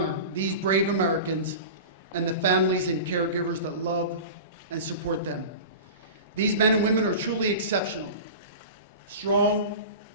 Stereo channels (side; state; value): both; inverted; correlation -0.32